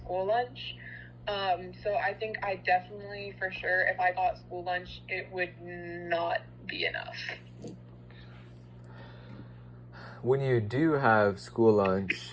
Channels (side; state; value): both; identical; correlation 1.00